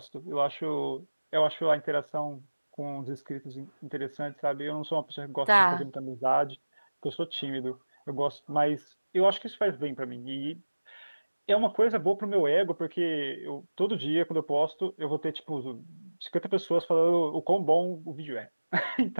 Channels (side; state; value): both; inverted; correlation -1.00